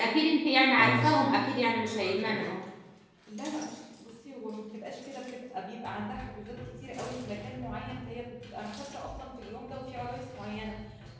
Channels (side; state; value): both; identical; correlation 1.00